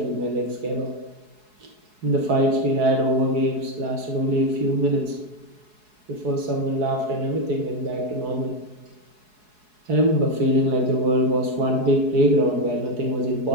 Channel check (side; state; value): left; late; 4.7 ms